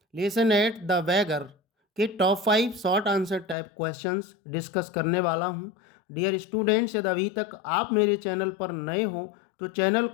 lesson at the beggar के top 5 short answer type questions discuss करने वाला हूं। डियर स्टूडेंट्स, यदि अभी तक आप मेरे चैनल पर नए हो तो चैनल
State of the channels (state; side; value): drops out; right; at 3.6 s